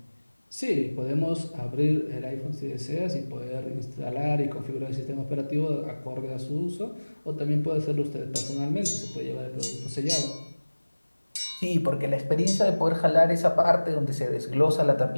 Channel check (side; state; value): both; inverted; correlation -1.00